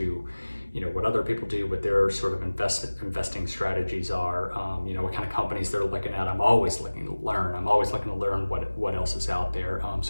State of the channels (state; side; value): inverted; both; correlation -1.00